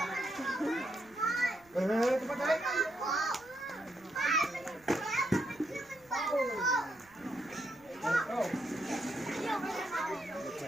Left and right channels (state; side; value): noise; right; rumble, 29 dB below the sound